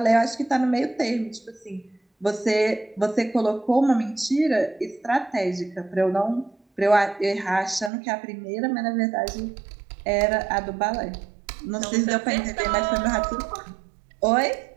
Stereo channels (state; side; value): drops out; left; at 7.9 s